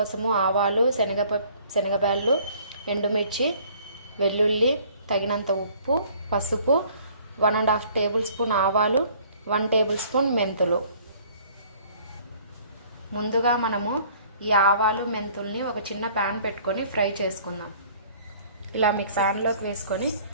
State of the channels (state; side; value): inverted; both; correlation -0.55